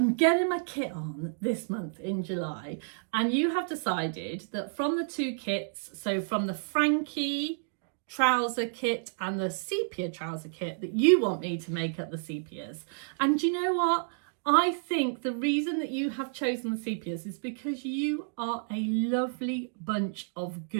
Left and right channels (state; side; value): silent; left; digital silence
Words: getting my kit on this month in July, and you have decided that from the 2 kits, so from the Frankie trouser kit and the sepia trouser kit, that you want me to make up the sepias. And do you know what? I think the reason that you have chosen the sepias is because you are a lovely bunch of